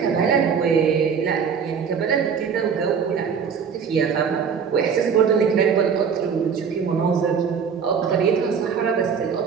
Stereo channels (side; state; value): left; quieter; 6.6 dB